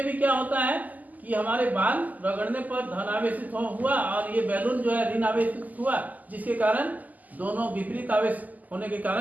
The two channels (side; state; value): left; late; 0.080 ms